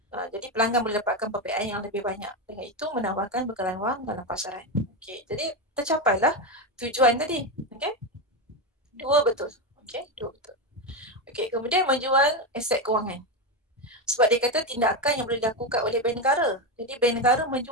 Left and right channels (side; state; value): both; normal; correlation 0.12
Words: Jadi pelanggan boleh dapatkan pembiayaan yang lebih banyak. Dengan itu menambahkan bekalan wang dalam pasaran. Okey, jadi tercapailah tujuan tadi. Okey. Dua betul. Okey, dua betul. Okey, kemudian menjual aset kewangan. Sebab dia kata tindakan yang boleh dilakukan oleh bank negara. Jadi bank negara